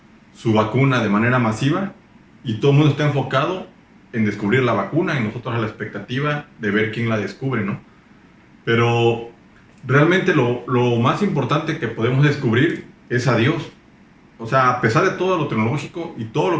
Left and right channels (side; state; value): both; identical; correlation 1.00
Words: vacuna de manera masiva, y todo el mundo está enfocado en descubrir la vacuna y nosotros a la expectativa de ver quién la descubre, ¿no? Pero realmente lo más importante que podemos descubrir es a Dios. O sea, a pesar de todo lo tecnológico y todo